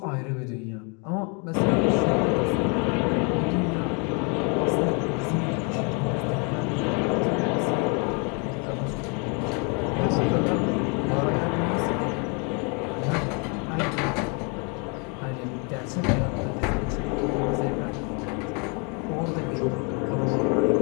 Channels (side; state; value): right; quieter; 34.6 dB